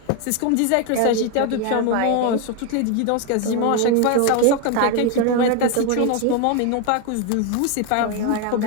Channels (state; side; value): different; both; correlation 0.02